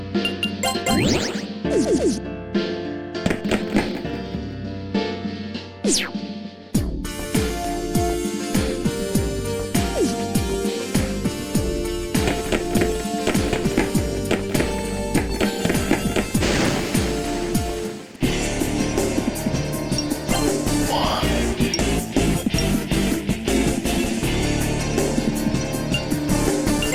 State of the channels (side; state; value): both; identical; correlation 1.00